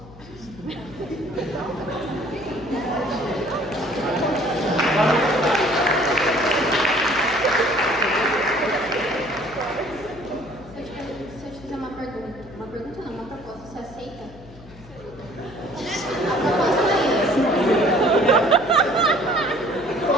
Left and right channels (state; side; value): noise; left; hum, 20 dB below the sound